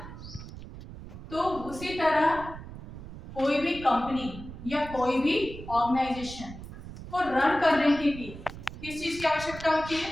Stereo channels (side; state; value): right; noise; rumble, 13 dB below the sound